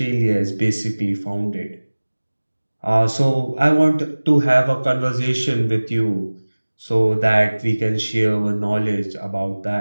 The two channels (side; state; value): both; inverted; correlation -1.00